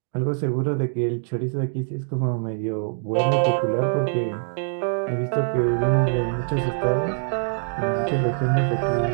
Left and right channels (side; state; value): left; silent; 63 dB below the other